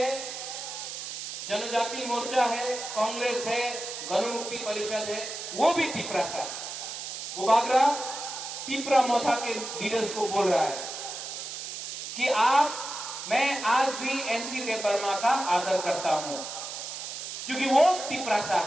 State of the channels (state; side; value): noise; right; hiss, 7 dB below the sound